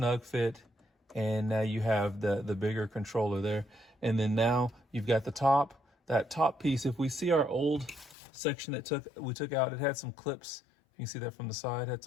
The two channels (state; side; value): drops out; right; at 8.2 s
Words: fit. And now you have the bigger controller there. And then now you've got that top piece. If we see our old section that we took out, it had some clips. You can see that from the side, had